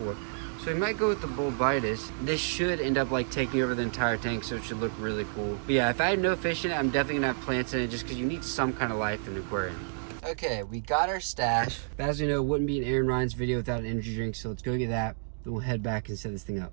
So we might go with the bulbitis. This should end up like taking over the entire tank, so it should look really cool. But yeah, if I had no fish in it, I'm definitely gonna have plants in it just because you need some kind of life in an aquarium. Okay, we got our stash. As we know, it wouldn't be an Aaron Ryan's video without an energy drink, so let's go get that. Then we'll head back and set this thing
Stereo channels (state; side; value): silent; left; digital silence